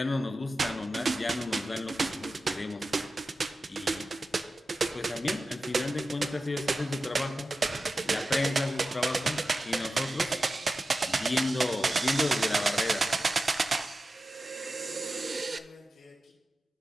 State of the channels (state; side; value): normal; both; correlation 0.93